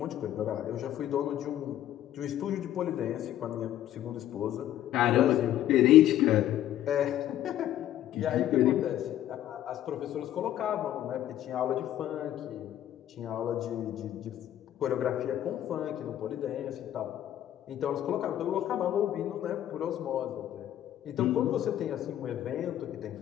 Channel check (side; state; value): right; quieter; 12.2 dB